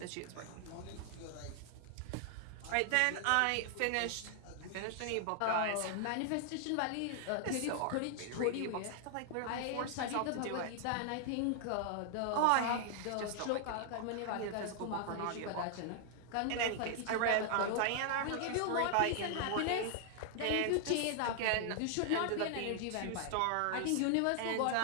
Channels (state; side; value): different; both; correlation 0.00